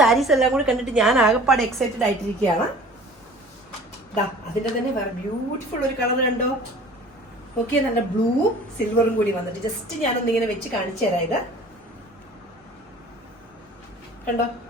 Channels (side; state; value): both; normal; correlation 0.46